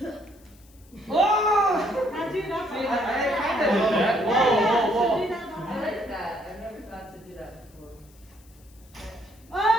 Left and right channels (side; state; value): left; noise; hiss, 28 dB below the sound